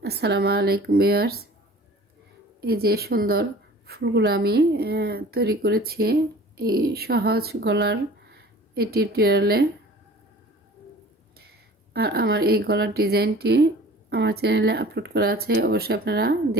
আসসালামু আলাইকুম ভিউয়ার্স। এই যে সুন্দর ফুলগুলো আমি তৈরি করেছি এই সহজ গলার এই টিউটোরিয়ালে। আর আমার এই গলার ডিজাইনটি আমার চ্যানেলে আপলোড করা আছে, অবশ্যই আপনারা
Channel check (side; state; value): both; normal; correlation 0.45